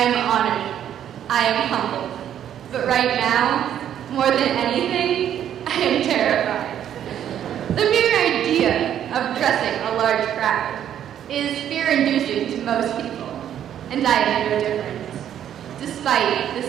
honored. I am humbled. But right now, more than anything, I am terrified. The mere idea of addressing a large crowd is fear-inducing to most people, and I am no different. Despite the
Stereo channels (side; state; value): left; quieter; 10.2 dB